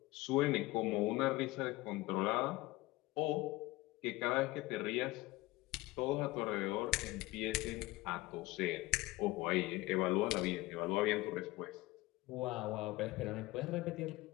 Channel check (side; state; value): right; quieter; 20.1 dB